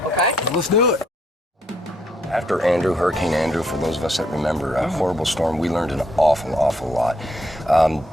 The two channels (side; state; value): both; normal; correlation 0.72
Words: okay? Let's do it. After Andrew, Hurricane Andrew, for those of us that remember, a horrible storm, we learned an awful lot.